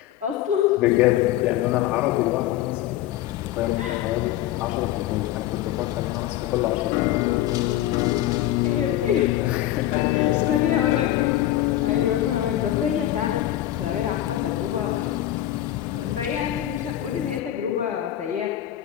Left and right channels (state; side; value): quieter; right; 13.4 dB